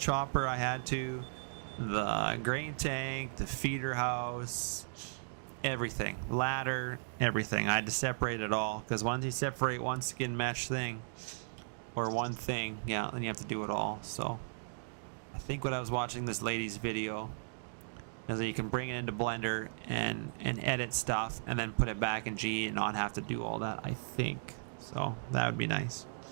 I had to. The grain tank, the feeder house, everything. Ladder, everything. I had to separate it all. Because once you separate one skin mesh thing, or one thing, yeah, then you have to do it all. So I think when I was watching this lady's video, is that you can bring it into Blender and edit stuff and then put it back in G and not have to do all that, I think. So that would be nice.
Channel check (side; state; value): left; silent; digital silence